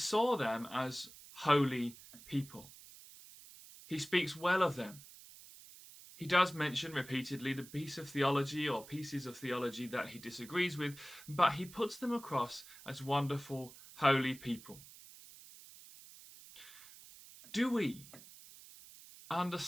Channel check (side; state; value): right; noise; hiss, 18 dB below the sound